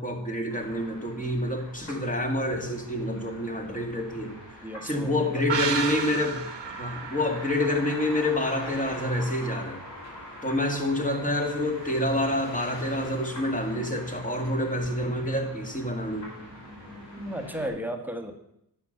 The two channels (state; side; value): normal; both; correlation 0.28